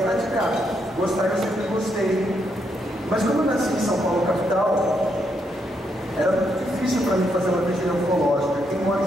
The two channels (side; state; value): both; normal; correlation 0.77